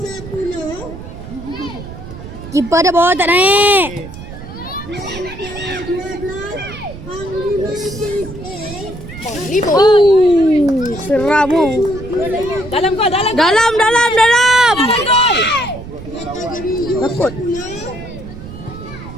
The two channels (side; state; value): right; noise; rumble, 13 dB below the sound